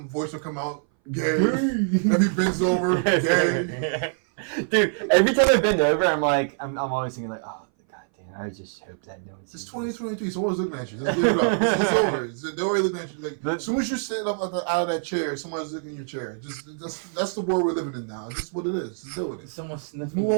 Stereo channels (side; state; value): left; silent; 59 dB below the other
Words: voice would come out gay. Then he bends over gay. Dude, every time I bend over, I'm always thinking like, oh, god damn, I just hope that no one's. It's 2023. Someone's looking at you. Just give it up. It's over. They're already looking at you. Like as soon as you sit up out of that chair, someone's looking at your chair. That's the world we're living in now. Just what it is. Just deal with it. Someone sniffing Move your